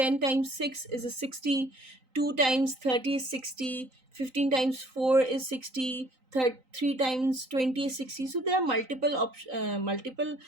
times 6 is a 60, 2 times 30 is 60, 15 times 4 is 60, 3 times 20 is 60. So there are multiple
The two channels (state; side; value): late; left; 3.9 ms